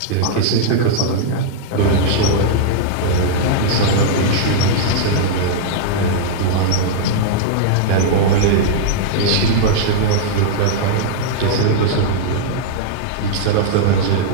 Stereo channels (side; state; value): both; different; correlation -0.02